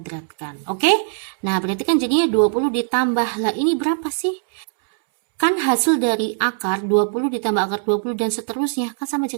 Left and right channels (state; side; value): silent; left; 65 dB below the other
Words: Oke? Nah, berarti kan jadinya 20 ditambah, lah ini berapa sih? Kan hasil dari akar 20 ditambah akar 20 dan seterusnya, kan sama aja